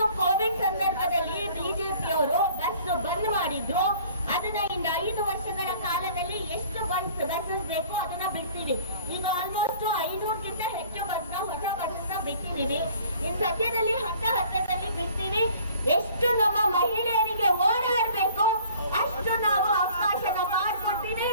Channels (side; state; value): both; inverted; correlation -0.52